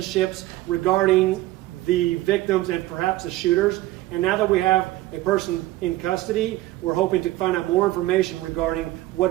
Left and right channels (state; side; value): quieter; left; 16.8 dB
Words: regarding the victims and perhaps the shooters. And now that we have a person in custody, we're hoping to find out more information regarding